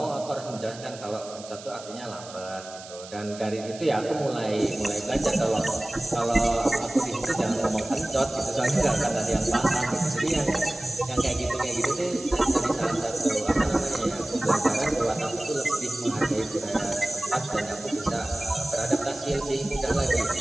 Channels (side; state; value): right; noise; hiss, 16 dB below the sound